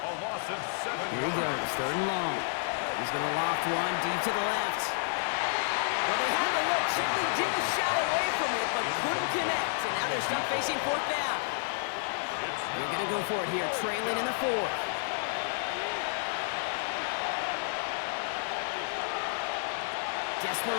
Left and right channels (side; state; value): right; silent; digital silence